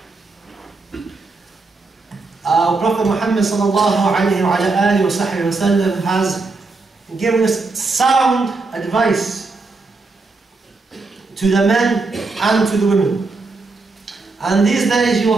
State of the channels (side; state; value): left; quieter; 3.7 dB